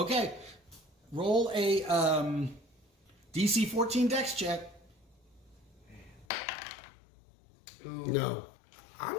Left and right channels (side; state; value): right; drops out; at 6.2 s